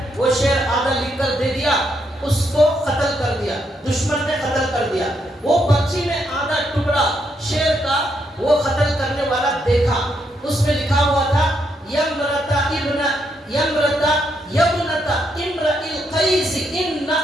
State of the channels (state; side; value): normal; both; correlation 0.77